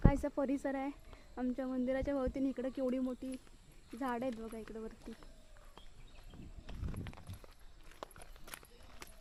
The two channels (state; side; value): identical; both; correlation 1.00